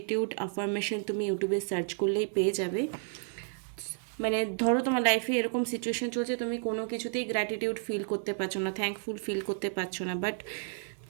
অ্যাফার্মেশন তুমি ইউটিউবে সার্চ করলেই পেয়ে যাবে। মানে ধরো তোমার লাইফে এরকম সিচুয়েশন চলছে, তুমি কোনো কিছুতেই গ্র্যাটিটিউড ফিল করতে পারছো না, থ্যাঙ্কফুল ফিল করতে পারছো না, বাট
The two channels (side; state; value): left; silent; 55 dB below the other